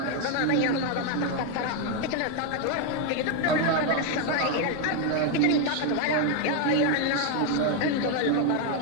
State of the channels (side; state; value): both; different; correlation 0.01